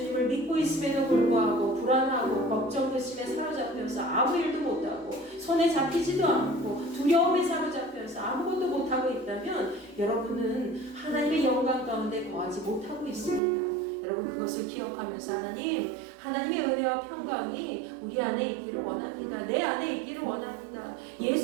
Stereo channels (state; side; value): drops out; left; at 13.4 s